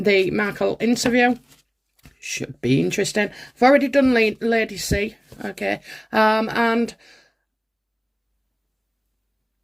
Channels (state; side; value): identical; both; correlation 1.00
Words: Markle interview. Should be interesting. I've already done Lady C. Okay, and